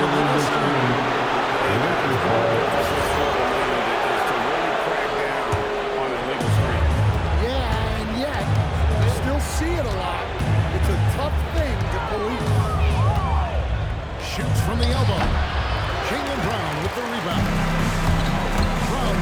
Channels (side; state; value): both; identical; correlation 1.00